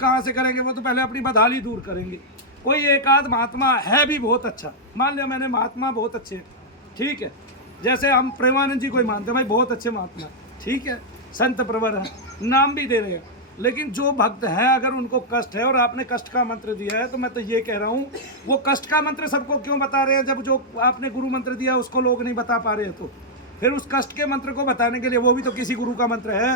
से करेंगे, वो तो पहले अपनी बदहाली दूर करेंगे। कोई एक आध महात्मा है भी बहुत अच्छा, मान लिया मैंने महात्मा बहुत अच्छे, ठीक है, जैसे हम प्रेमानंद जी को ही मानते हैं भाई बहुत अच्छे महात्मा, ठीक है, संत प्रवर है, नाम भी दे रहे हैं। लेकिन जो भक्त है अगर उनको कष्ट है और आपने कष्ट का मंत्र दिया है, तो मैं तो ये कह रहा हूँ वो कष्ट का मंत्र सबको क्यों बता रहे हैं, जब जो आपने गुरु मंत्र दिया उसको लोग नहीं बता पा रहे हैं, तो फिर उस कष्ट के मंत्र को बताने के लिए वो भी तो किसी गुरु का मंत्र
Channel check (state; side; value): normal; both; correlation -0.04